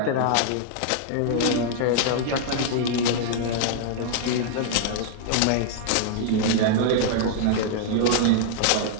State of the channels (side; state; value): both; different; correlation -0.01